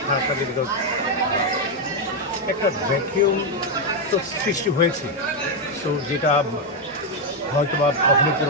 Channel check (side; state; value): both; normal; correlation 0.03